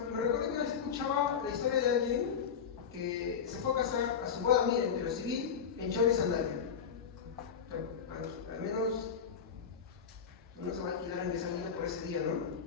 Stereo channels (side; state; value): right; quieter; 7.0 dB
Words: que una vez escuchaba la historia de alguien que se fue a casar a su boda, miren, pero civil, en chor y sandalia. Al menos no se va a alquilar en esa vida por ese día, ¿no?